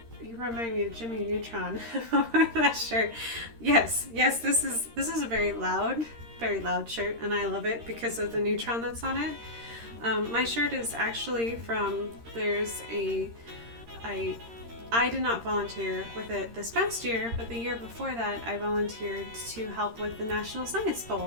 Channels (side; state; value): left; late; 13 ms